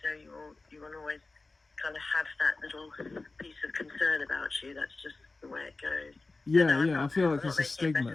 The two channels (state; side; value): quieter; right; 3.5 dB